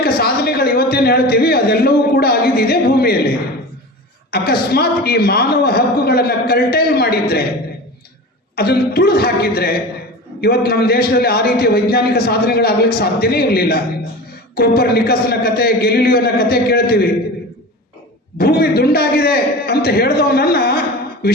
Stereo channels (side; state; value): both; normal; correlation 0.32